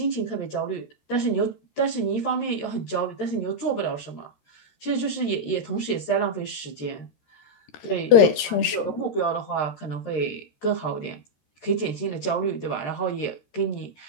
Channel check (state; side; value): late; right; 13 ms